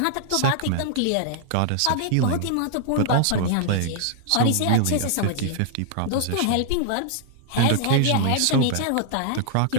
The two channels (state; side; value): different; both; correlation 0.00